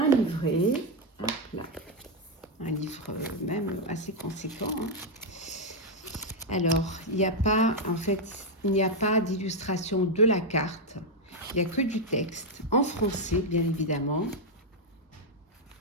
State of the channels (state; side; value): normal; both; correlation 0.01